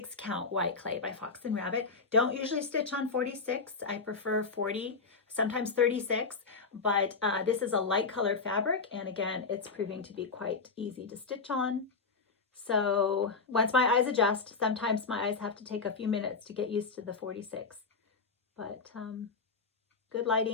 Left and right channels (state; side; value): quieter; right; 4.5 dB